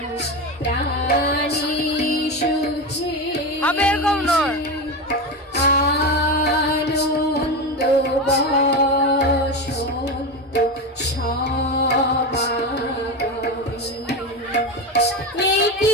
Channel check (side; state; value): both; normal; correlation 0.19